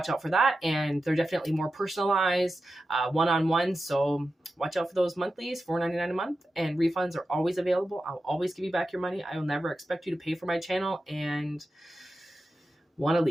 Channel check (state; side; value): normal; both; correlation 0.91